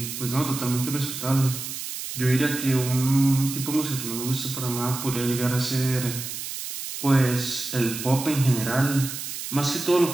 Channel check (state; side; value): noise; right; hiss, 7 dB below the sound